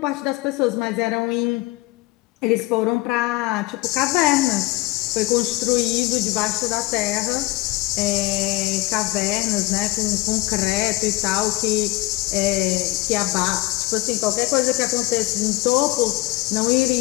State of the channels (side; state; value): right; quieter; 19.8 dB